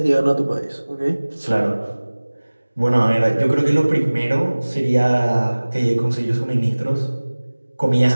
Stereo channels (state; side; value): inverted; both; correlation -1.00